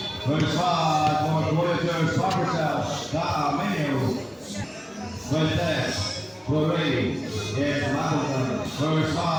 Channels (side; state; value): both; identical; correlation 1.00